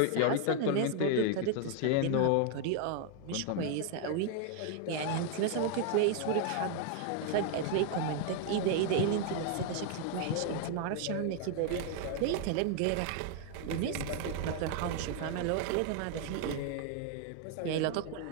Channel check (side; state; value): both; different; correlation 0.00